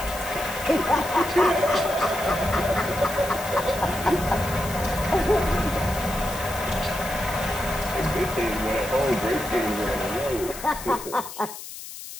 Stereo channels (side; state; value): left; noise; hiss, 12 dB below the sound